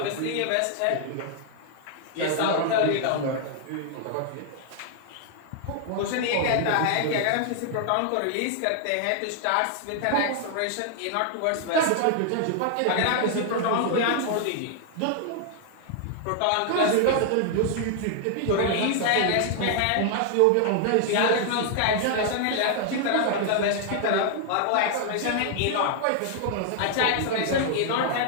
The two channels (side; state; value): both; different; correlation 0.00